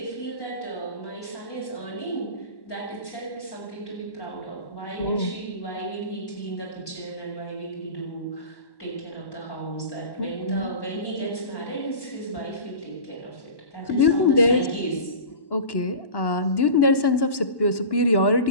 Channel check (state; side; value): late; right; 1.1 ms